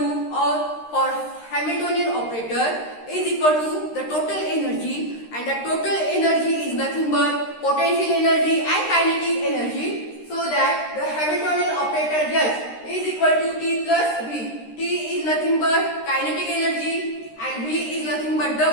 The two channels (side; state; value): right; late; 13 ms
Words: or for Hamiltonian operator is equal to the total energy, and the total energy is nothing but potential energy and kinetic energy. So that the Hamiltonian operator S is equal to T plus V. T is nothing but kinetic energy and V is nothing but the